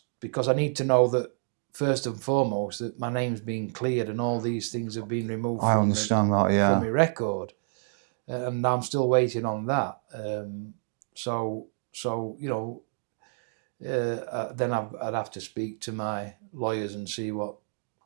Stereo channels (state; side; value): silent; left; digital silence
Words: because I need to know that first and foremost that my name's been cleared and all these things have been removed I from understand that, yeah. from my record, and I'm still waiting on that. So then I'd have to speak to my lawyers and see what